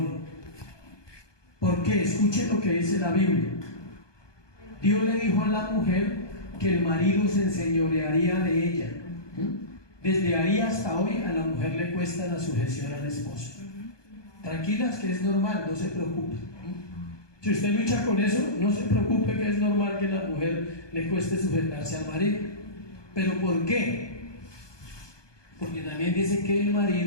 ¿Por qué? Escuchen lo que dice la Biblia. Dios le dijo a la mujer que el marido se enseñorearía de ella. Desde ahí hasta hoy a la mujer le cuesta la sujeción al esposo. Tranquilas que es normal, no se preocupen. Si usted lucha con eso, no se preocupe que es normal que a la mujer le cueste sujetarse al marido. ¿Pero por qué? Porque también dice que el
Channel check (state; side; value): late; right; 1.2 ms